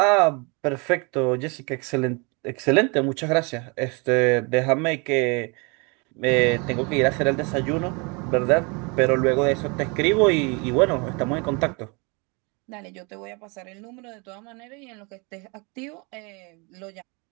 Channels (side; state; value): left; quieter; 30.7 dB